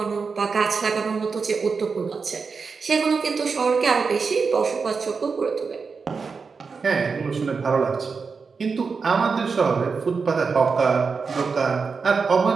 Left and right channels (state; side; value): quieter; left; 5.0 dB